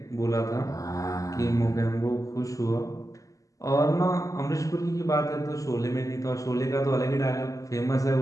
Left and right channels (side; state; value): right; late; 0.16 ms